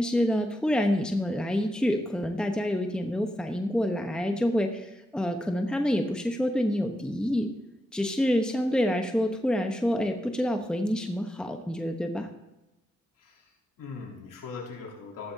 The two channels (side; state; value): both; normal; correlation 0.87